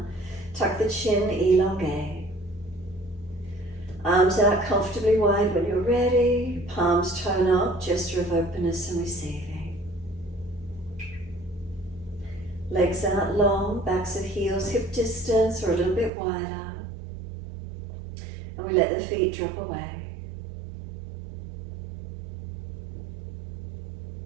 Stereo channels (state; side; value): drops out; left; at 16.1 s